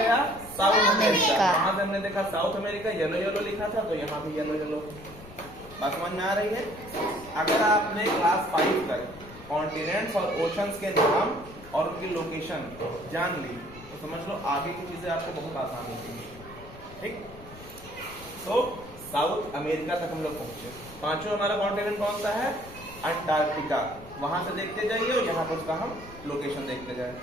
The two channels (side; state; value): left; noise; rumble, 18 dB below the sound